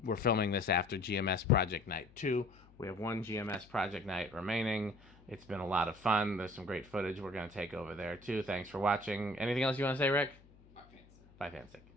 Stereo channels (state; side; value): noise; left; hum, 25 dB below the sound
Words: we're filming this after GMS Project Night 2. We have one GMS Project Night remaining. It's been a lot of fun. There's some great footage we're going to take over there too. Thanks for watching. Anything else you want to say, Rick? Bye, fancy. Bye, Fansick.